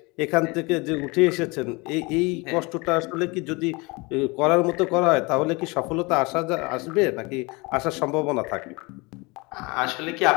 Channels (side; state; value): right; quieter; 26.3 dB